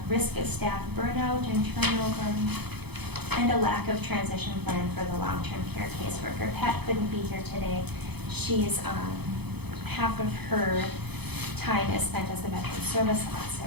Risk of staff burnout and turnover, and a lack of transition plan for the long-term care caseworker. Pat couldn't be here today. She's half of her time is spent as a veteran service officer,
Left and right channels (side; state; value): left; late; 0.98 ms